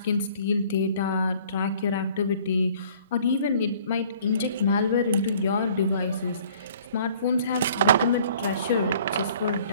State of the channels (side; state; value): both; inverted; correlation -0.54